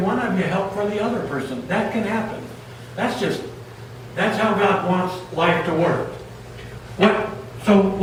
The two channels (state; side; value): identical; both; correlation 1.00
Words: of you help for the other person. That can happen. That's how God wants life to work. So